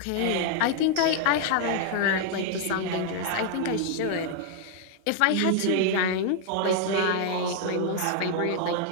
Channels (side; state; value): both; different; correlation 0.00